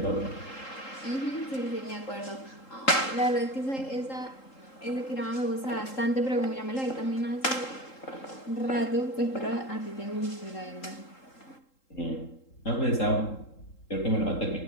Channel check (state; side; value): late; right; 3.8 ms